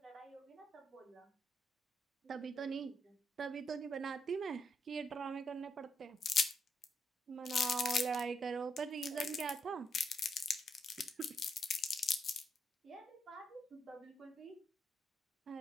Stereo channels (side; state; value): both; normal; correlation 0.77